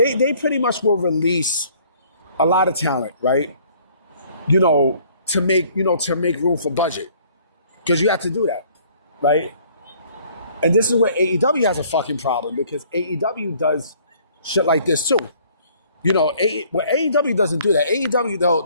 pretty much will release a lot of talent, right? To make room for budget. Because you have to do that, right? And this is where AEW has a fucking problem, because AEW does shit like this too. AEW doesn't do that. AEW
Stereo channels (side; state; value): both; inverted; correlation -0.58